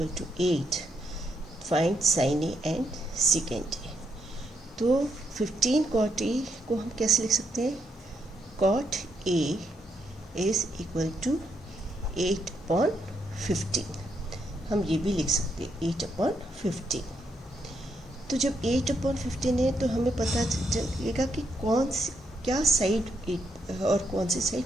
to 8. Find sin A and secant A. तो 15 cot A को हम कैसे लिख सकते हैं? Cot A is equal to 8/15. हम ये भी लिख सकते हैं 8/15. तो जब 8/15 है तो हमें पता चलेगा कि क्या साइड 8 और कौन सी साइड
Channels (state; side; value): normal; both; correlation 0.78